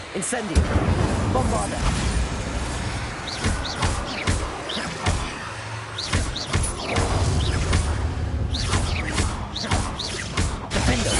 Incendio! Bombarda! Defendo!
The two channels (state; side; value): identical; both; correlation 1.00